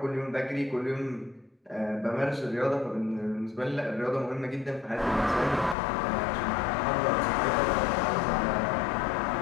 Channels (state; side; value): drops out; right; at 5.8 s